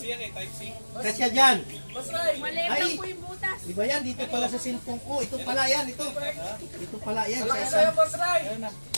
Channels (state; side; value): inverted; both; correlation -1.00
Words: yan eh, Type C. Kasya dyan. Masray! Ay, di ba yan? Dito pala sa cellphone ko. Ito pala yan. Ito. Ito pala yan. Sa Malaki isa. sa'yo, Masray!